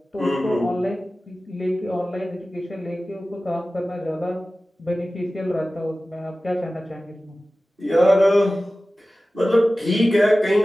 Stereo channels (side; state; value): both; normal; correlation 0.96